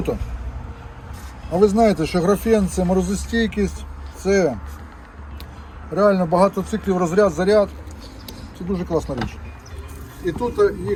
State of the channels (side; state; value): both; identical; correlation 1.00